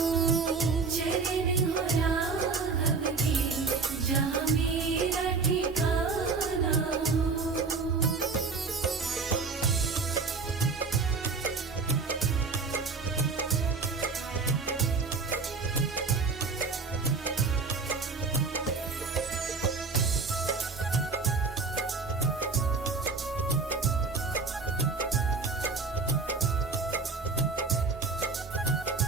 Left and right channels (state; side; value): quieter; left; 4.5 dB